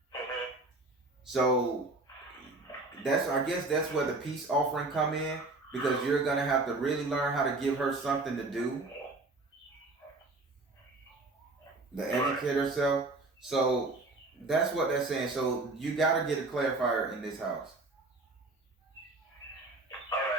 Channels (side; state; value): left; quieter; 3.2 dB